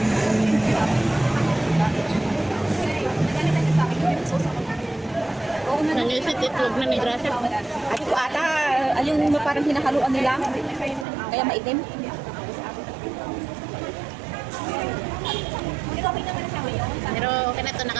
Nangisit itlog na ni Gracia. Ati ko ata, yung parang hinahaluan nila. Kaya maitim. Pero okay na ito,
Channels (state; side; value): drops out; left; at 11.1 s